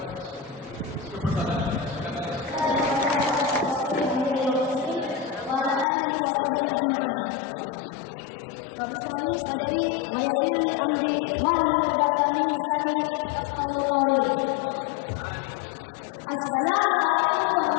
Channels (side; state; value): right; drops out; at 5.9 s